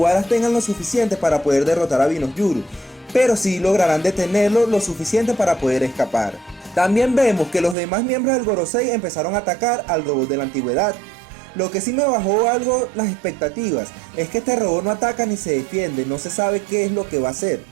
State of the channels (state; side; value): drops out; left; at 7.8 s